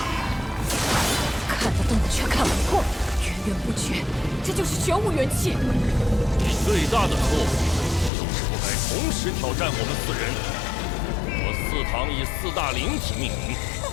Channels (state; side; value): drops out; right; at 8.1 s